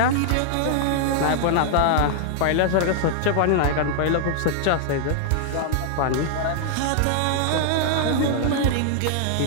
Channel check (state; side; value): different; both; correlation -0.01